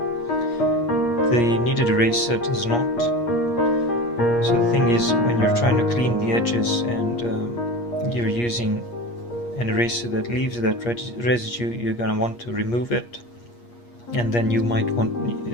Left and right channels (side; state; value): right; late; 8.4 ms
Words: The kneaded eraser does not. So the thing is, when you're trying to clean the edges and you're using an eraser that leaves that residue, you're going to want to remove it, and then you